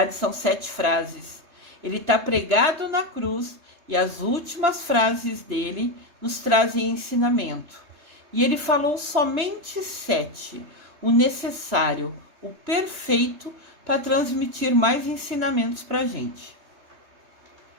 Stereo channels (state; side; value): late; left; 3.3 ms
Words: são 7 frases. Ele está pregado na cruz e as últimas frases dele nos trazem ensinamento. E ele falou somente 7, o necessário, o perfeito, para transmitir mais ensinamentos para a gente.